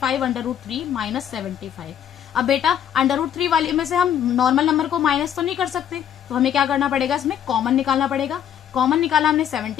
√3 minus 75। अब बेटा √3 वाली में से हम नॉर्मल नंबर को माइनस तो नहीं कर सकते, तो हमें क्या करना पड़ेगा, इसमें कॉमन निकालना पड़ेगा। कॉमन निकाला हमने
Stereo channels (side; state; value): right; quieter; 9.6 dB